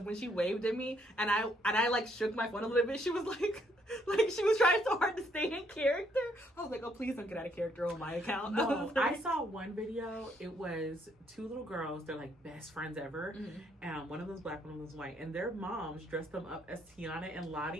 when she waved at me and I like shook my phone a little bit, she was like she was trying so hard to stay in character. I was like, oh, please don't get out of character on my account. No, I saw one video. It was two little girls. They're like best friends ever. And one of them's black, one of them's white. And their moms dressed them up as Tiana and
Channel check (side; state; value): both; normal; correlation 0.70